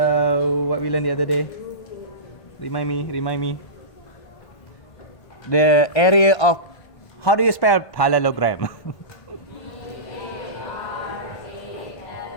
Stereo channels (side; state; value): right; late; 1.5 ms